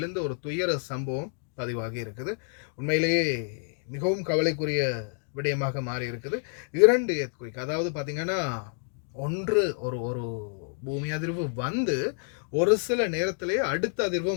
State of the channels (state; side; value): silent; right; 59 dB below the other